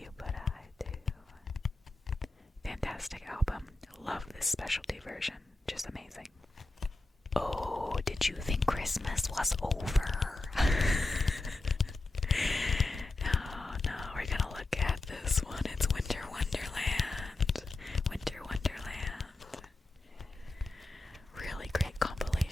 Did you think Christmas was over? No, we're gonna look at this one. It's Winter Wonderland. Winter Wonderland. Really great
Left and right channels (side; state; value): right; quieter; 3.1 dB